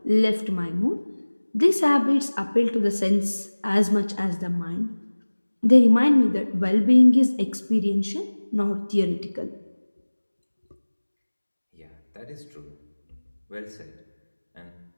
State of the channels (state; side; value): inverted; both; correlation -1.00